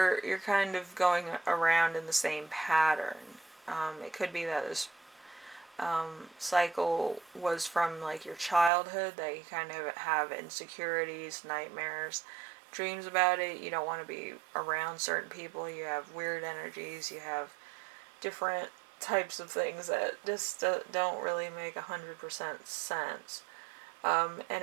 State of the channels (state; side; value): drops out; left; at 8.7 s